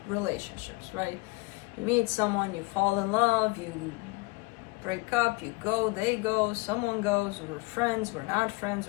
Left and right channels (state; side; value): quieter; right; 24.8 dB